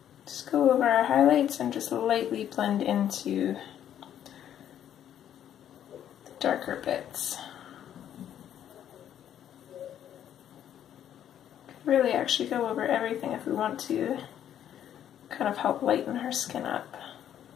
just go over our highlights and just lightly blend into the darker bits. Really actually go over everything if we want to kind of help lighten her skin up.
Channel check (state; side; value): quieter; right; 10.3 dB